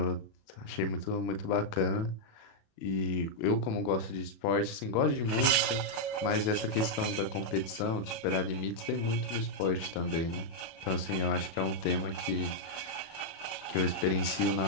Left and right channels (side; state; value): right; late; 36 ms